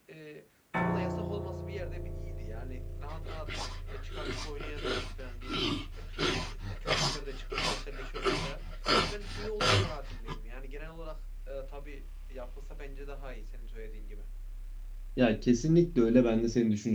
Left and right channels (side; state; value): both; identical; correlation 1.00